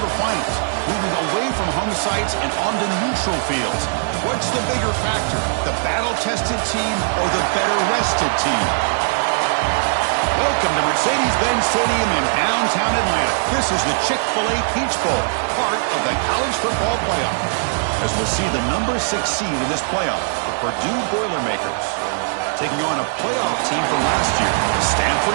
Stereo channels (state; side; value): silent; left; digital silence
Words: moving away from home sites and onto neutral fields. What's the bigger factor, the battle-tested team or the better-rested team? Welcome to Mercedes-Benz Stadium in downtown Atlanta. This is the Chick-fil-A Peach Bowl, part of the college football playoff. As we'll see the number 6 seed in this playoff, the Purdue Boilermakers, taking on a playoff team from last year, the